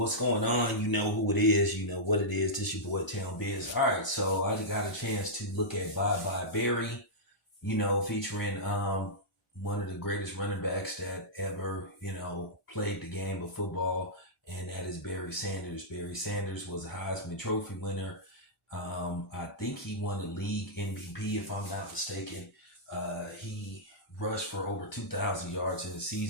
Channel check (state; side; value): normal; both; correlation -0.11